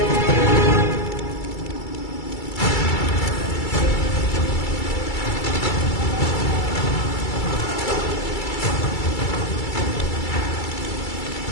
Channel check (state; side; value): late; right; 2.3 ms